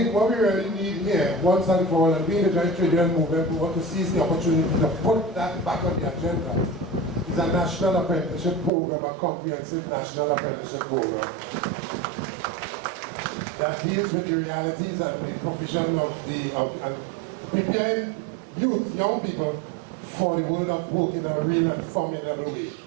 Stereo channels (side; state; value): left; drops out; at 8.7 s